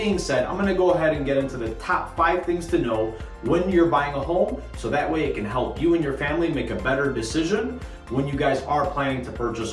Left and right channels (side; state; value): both; identical; correlation 1.00